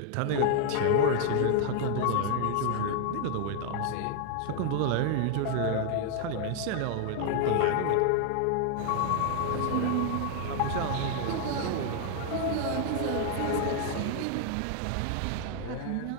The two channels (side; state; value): both; different; correlation 0.00